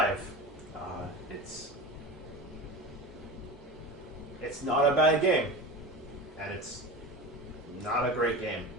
It's not a bad game, and it's not a great game.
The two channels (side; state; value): both; normal; correlation 0.30